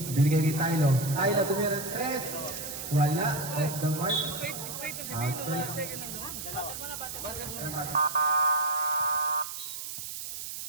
Binigay kay Tylo. Tylo tumira ng 3. Wala. Off the mark. Straight na si Bino. Outside. Second lang doon. Batter mo na, batter mo.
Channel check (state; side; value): noise; right; hiss, 7 dB below the sound